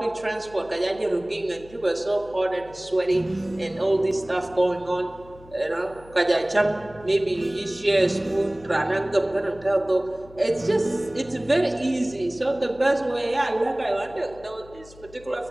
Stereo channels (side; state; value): left; noise; hum, 22 dB below the sound